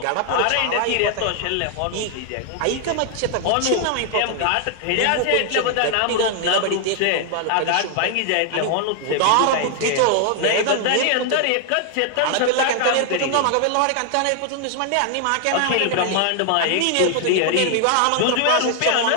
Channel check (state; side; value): different; both; correlation 0.00